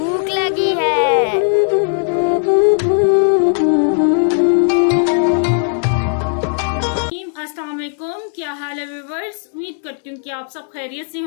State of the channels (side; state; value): right; silent; 68 dB below the other